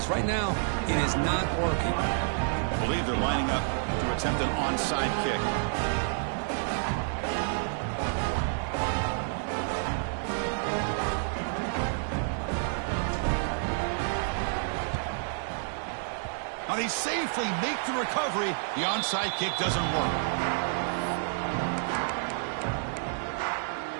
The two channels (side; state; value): left; silent; 58 dB below the other